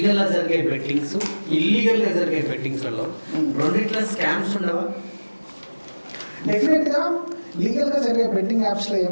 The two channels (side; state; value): both; inverted; correlation -1.00